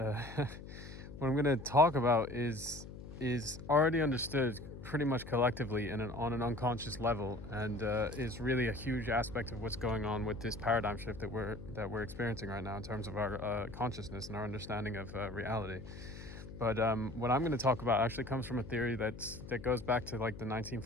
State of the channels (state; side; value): noise; left; hum, 13 dB below the sound